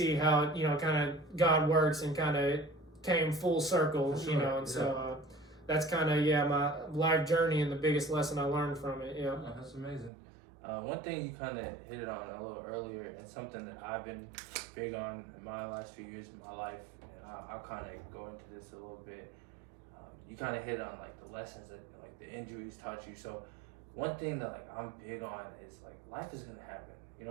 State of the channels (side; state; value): left; drops out; at 10.1 s